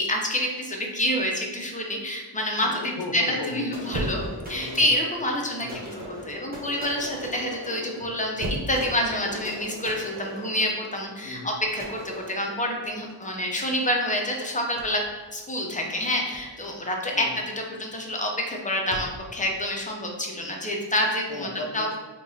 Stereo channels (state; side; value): normal; both; correlation 0.02